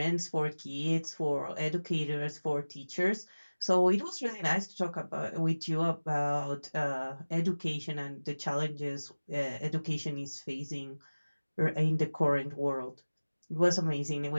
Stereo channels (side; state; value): both; inverted; correlation -1.00